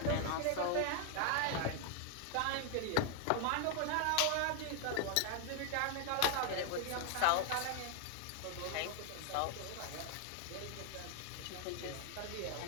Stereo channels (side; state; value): both; different; correlation 0.00